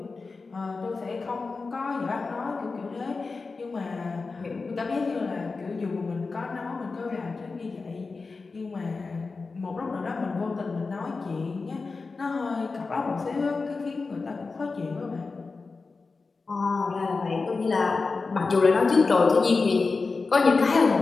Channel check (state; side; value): quieter; right; 4.2 dB